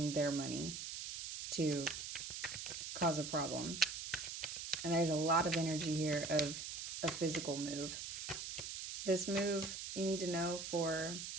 their money to cause a problem. And there's a lot of energy here of a physical move. This move, you need to know, for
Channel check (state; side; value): noise; right; hiss, 6 dB below the sound